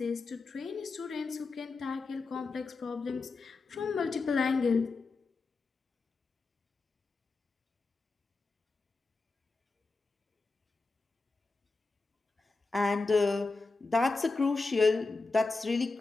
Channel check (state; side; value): quieter; right; 3.8 dB